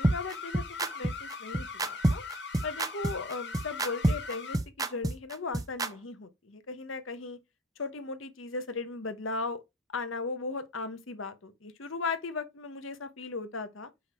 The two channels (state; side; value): normal; both; correlation 0.43